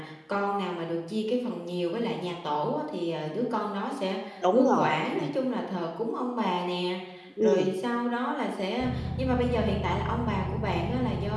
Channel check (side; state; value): both; identical; correlation 1.00